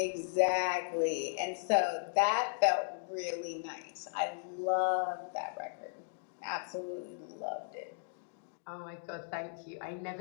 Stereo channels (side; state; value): right; silent; digital silence